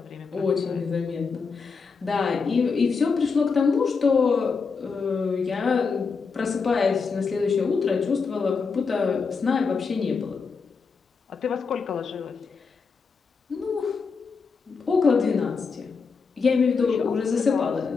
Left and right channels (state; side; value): quieter; right; 5.1 dB